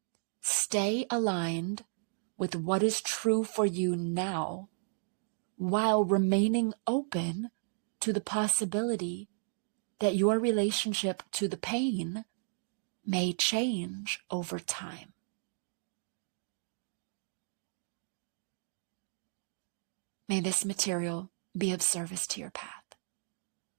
stay aligned with what is true for you now, while remaining open to the possibility that your relationship to the pain may change over time. May this material be of service to your path.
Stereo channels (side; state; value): left; silent; digital silence